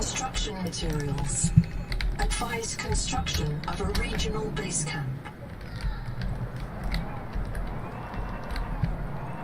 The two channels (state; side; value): identical; both; correlation 1.00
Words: materials. Advise construction of a regional base camp.